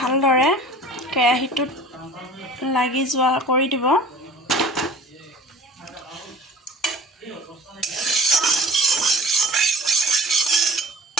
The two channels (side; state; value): both; normal; correlation 0.43